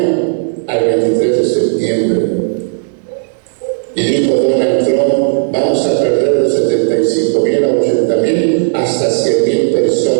al 23 de septiembre. Y dijo Donald Trump, vamos a perder de 75,000 a 80,000 hasta 100,000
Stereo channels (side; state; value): left; silent; digital silence